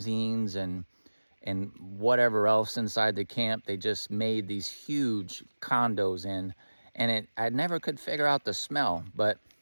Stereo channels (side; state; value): both; inverted; correlation -1.00